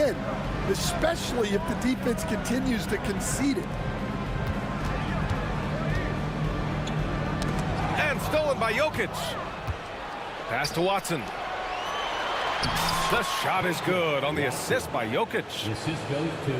especially if the defense continues to concede it. by Jokic. Pass to Watson. The shot is good on the assist by Jokic. Assist goes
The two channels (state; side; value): identical; both; correlation 1.00